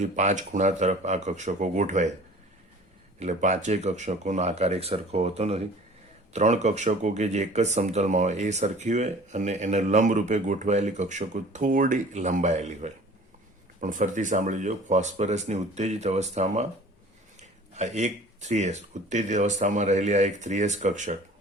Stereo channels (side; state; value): both; normal; correlation 0.47